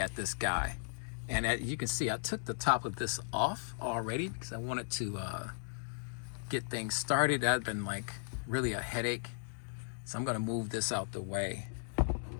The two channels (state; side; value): silent; right; digital silence